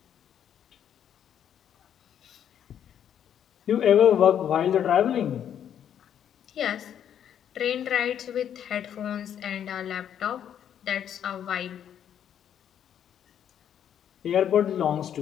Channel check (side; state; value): right; quieter; 9.4 dB